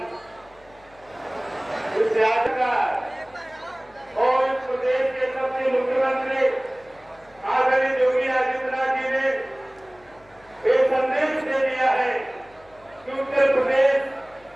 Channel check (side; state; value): left; noise; hum, 28 dB below the sound